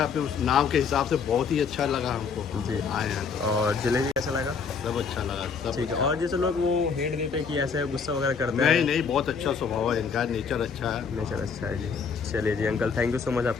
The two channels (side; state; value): right; quieter; 5.7 dB